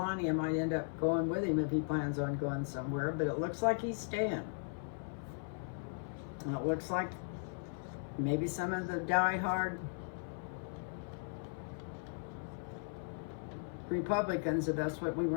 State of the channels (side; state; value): right; silent; 53 dB below the other